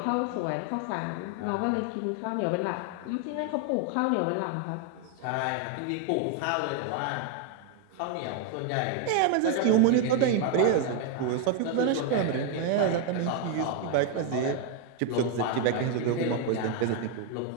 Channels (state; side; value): different; both; correlation 0.01